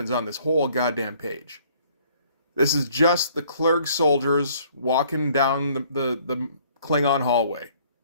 on this whole goddamn page. This is just the Clerg soldiers walking down the Klingon hallway,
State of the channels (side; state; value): both; inverted; correlation -0.59